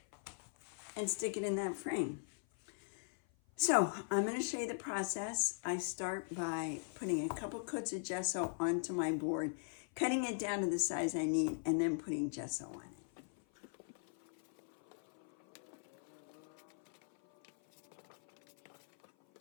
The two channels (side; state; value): right; silent; 51 dB below the other